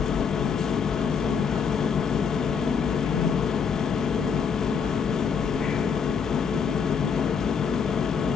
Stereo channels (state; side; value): quieter; right; 6.4 dB